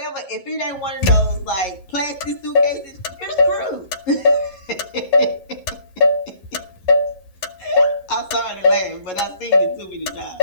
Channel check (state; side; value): late; right; 11 ms